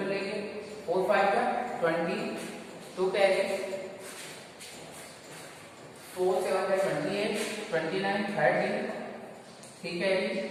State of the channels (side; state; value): both; identical; correlation 1.00